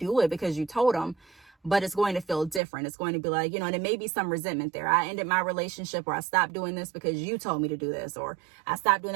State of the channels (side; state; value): left; drops out; at 2.6 s